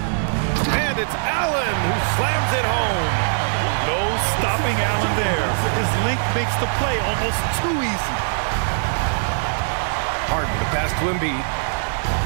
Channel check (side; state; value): left; silent; digital silence